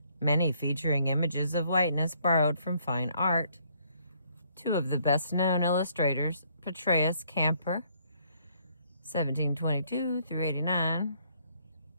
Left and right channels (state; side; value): inverted; both; correlation -0.67